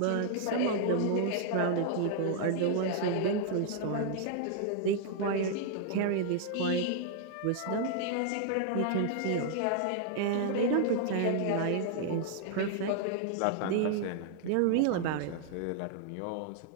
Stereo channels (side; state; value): both; different; correlation 0.00